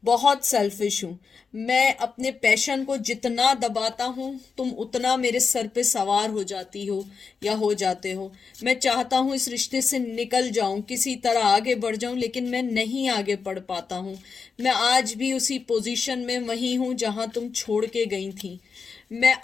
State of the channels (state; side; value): quieter; right; 5.3 dB